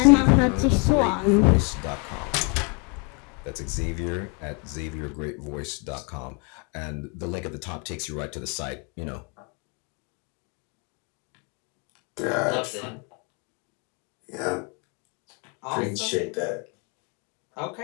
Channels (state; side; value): quieter; right; 34.6 dB